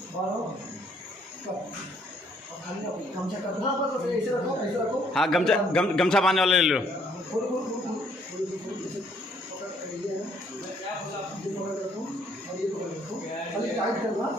बारो कब खाली गमछा कर, हाँ बस ऐसे रखो ऐसे रखो। हाँ गमछा बांधने वाले ले लो। खोल खोल खोल टाइट करना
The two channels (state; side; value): normal; both; correlation 0.66